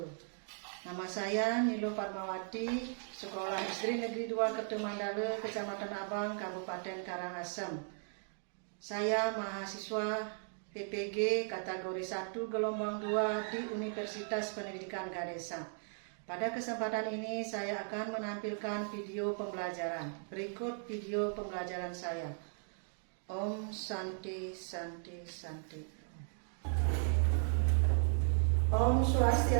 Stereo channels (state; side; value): silent; left; 53 dB below the other